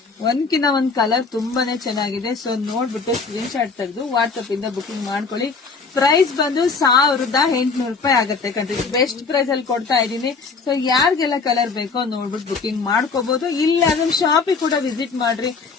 ಒಂದ್ಕಿನ್ನ ಒಂದ್ ಕಲರ್ ತುಂಬಾನೇ ಚೆನ್ನಾಗಿದೆ. ಸೊ ನೋಡ್ಬಿಟ್ಟು ಸ್ಕ್ರೀನ್ ಶಾಟ್ ತೆಗೆದು ವಾಟ್ಸ್ಆಪ್ ಇಂದ ಬುಕಿಂಗ್ ಮಾಡ್ಕೊಳ್ಳಿ. ಪ್ರೈಸ್ ಬಂದು 1800 ರೂಪಾಯಿ ಆಗುತ್ತೆ ಕಣ್ರಿ. ಬೆಸ್ಟ್ ಪ್ರೈಸ್ ಅಲ್ಲಿ ಕೊಡ್ತಾ ಇದೀನಿ. ಸೊ ಯಾರಿಗೆಲ್ಲ ಕಲರ್ ಬೇಕೋ ನೋಡ್ಬಿಟ್ಟು ಬುಕಿಂಗ್ ಮಾಡ್ಕೋಬಹುದು. ಇಲ್ಲ ಅದನ್ನ ಶಾಪಿಗೆ ಕೂಡ ವಿಸಿಟ್ ಮಾಡ್ರಿ.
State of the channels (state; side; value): quieter; right; 4.6 dB